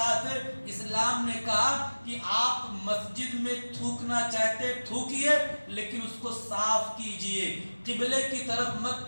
اسلام نے کہا کہ آپ مسجد میں تھوکنا چاہتے تھوکیے لیکن اس کو صاف کیجئے، قبلے کی طرف مت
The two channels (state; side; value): inverted; both; correlation -1.00